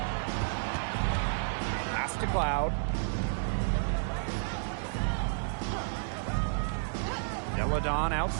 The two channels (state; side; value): silent; left; 55 dB below the other